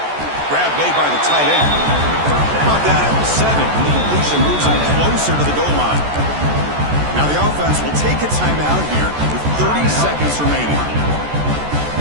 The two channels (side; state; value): left; late; 14 ms